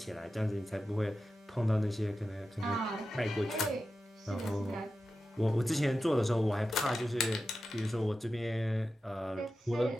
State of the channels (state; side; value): normal; both; correlation 0.92